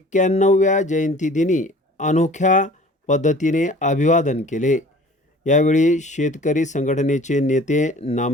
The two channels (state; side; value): normal; both; correlation 0.48